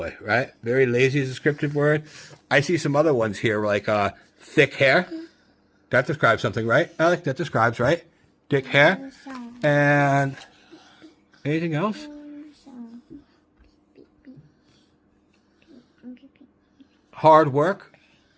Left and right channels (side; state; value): both; identical; correlation 1.00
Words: right? Very lazy is a descriptive word. I see some other ones here, like thick hair. That describes something, right? Alec, that describes, right? Thick hair. And anything else? Hard work.